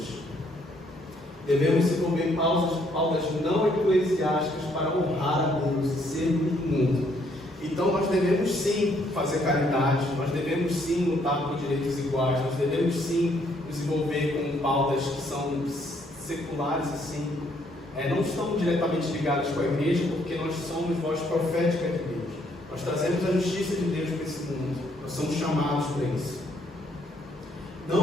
Devemos desenvolver pautas não eclesiásticas para honrar a Deus e sermos do mundo. Então nós devemos sim fazer caridade, nós devemos sim lutar por direitos iguais, nós devemos sim nos envolver com pautas que são seculares assim, não estão diretamente ligadas com a igreja, porque nós somos voz profética de Deus. Nós trazemos a justiça de Deus para esse mundo, nós somos chamados para isso.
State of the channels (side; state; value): both; normal; correlation 0.69